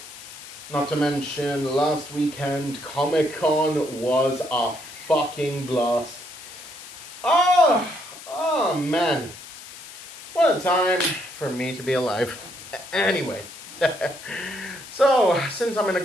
not to mention last weekend Comic-Con was a fucking blast. Oh man, what a time for me to be alive. Anyway. So, since I'm in a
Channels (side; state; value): left; noise; hiss, 15 dB below the sound